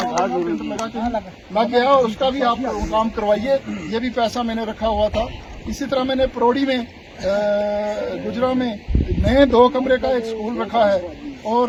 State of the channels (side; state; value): both; identical; correlation 1.00